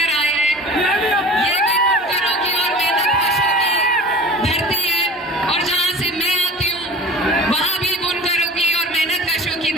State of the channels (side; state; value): both; normal; correlation 0.39